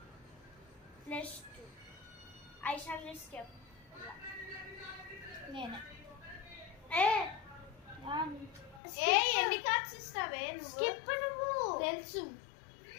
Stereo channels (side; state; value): right; drops out; at 8.8 s